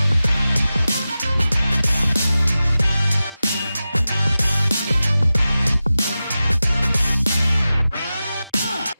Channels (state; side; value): inverted; both; correlation -0.94